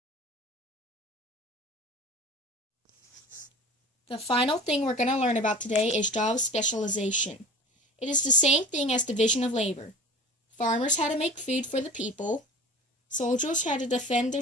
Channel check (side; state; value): both; normal; correlation 0.38